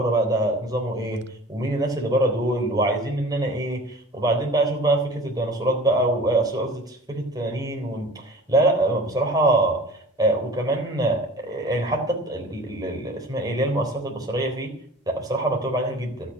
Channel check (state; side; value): normal; both; correlation 0.43